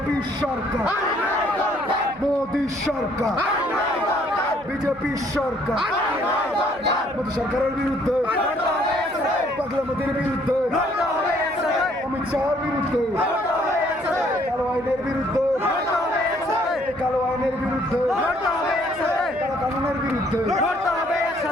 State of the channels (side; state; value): right; noise; hum, 25 dB below the sound